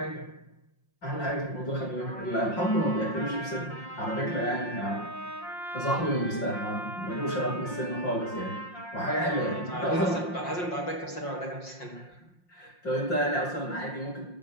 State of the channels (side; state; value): right; late; 5.6 ms